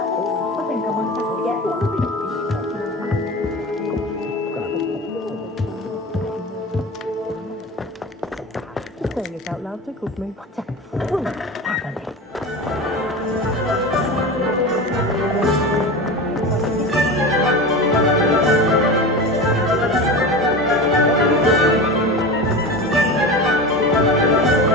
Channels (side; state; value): both; normal; correlation 0.28